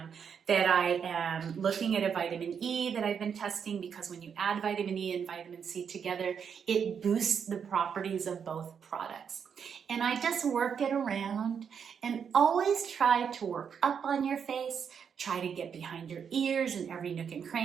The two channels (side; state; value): left; quieter; 7.2 dB